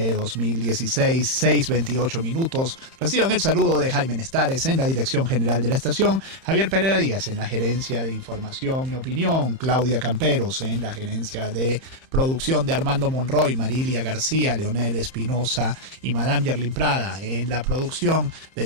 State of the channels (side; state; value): left; late; 30 ms